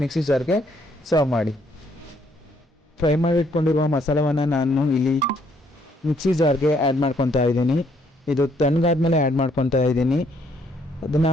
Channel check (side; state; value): both; normal; correlation 0.68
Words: ಮಿಕ್ಸಿ ಜಾರ್ಗೆ ಸರ್ವ್ ಮಾಡಿ. ಫ್ರೈ ಮಾಡಿಟ್ಕೊಂಡಿರುವ ಮಸಾಲವನ್ನು ನಾನು ಇಲ್ಲಿ ಮಿಕ್ಸಿ ಜಾರ್ಗೆ ಆ್ಯಡ್ ಮಾಡ್ಕೊತಾ ಇದ್ದೀನಿ. ಇದು ತಣ್ಣಗಾದ್ಮೇಲೆ ಆ್ಯಡ್ ಮಾಡ್ಕೊತಾ ಇದ್ದೀನಿ. ಅದನ್ನು